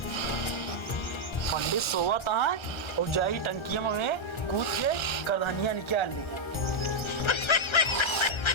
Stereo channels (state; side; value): late; right; 1.3 ms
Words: पंडित सोवा तहाँ और जाई टंकिया में कूद के करधनिया निकाल ली।